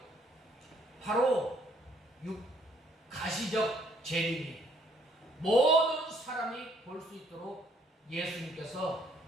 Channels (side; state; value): both; normal; correlation 0.65